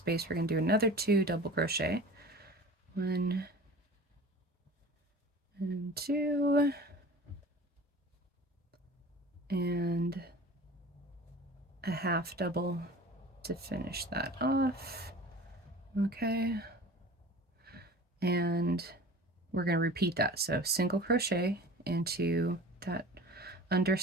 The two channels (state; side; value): normal; both; correlation 0.39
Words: we're going to do another 2 double crochet, 1 and 2, and a half double to finish that off. Okay, and we're going to repeat that. So single crochet into that